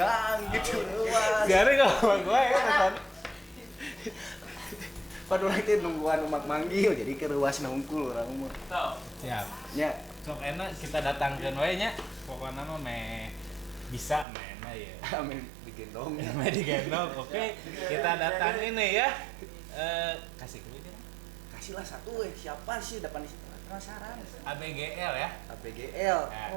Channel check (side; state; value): left; drops out; at 14.2 s